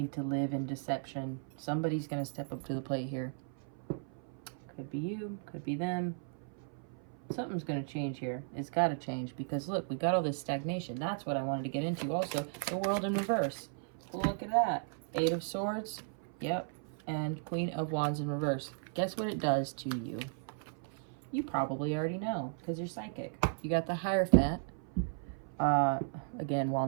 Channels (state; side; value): silent; left; 54 dB below the other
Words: to live in deception. Somebody's going to step up to the plate here. Could be you, could be them. Something's going to change here. It's got to change because look, we got all this stagnation. That's what I wanted to get into also. The World in reverse. Look at that. 8 of Swords. Yep. And Queen of Wands in reverse. Guess what it does to you? You probably already know because you're psychic. You got the Hierophant. Again,